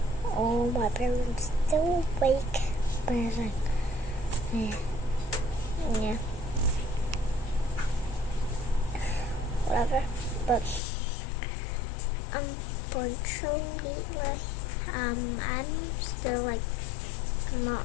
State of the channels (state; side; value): drops out; right; at 10.8 s